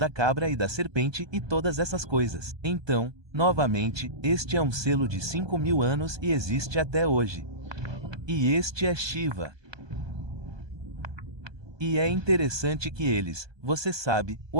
cabra e da serpente e todas essas coisas. Então, novamente, este é um selo de 5.000 anos e existe até hoje. E este é Shiva. E é interessante que você sabe, o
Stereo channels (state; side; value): late; left; 1.2 ms